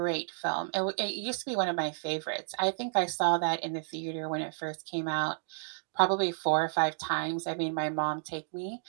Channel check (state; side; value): silent; left; digital silence